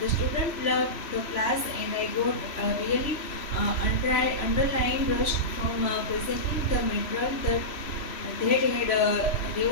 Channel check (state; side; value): late; right; 3.1 ms